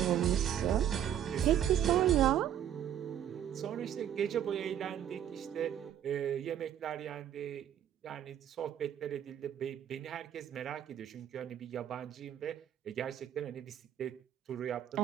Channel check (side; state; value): left; quieter; 10.2 dB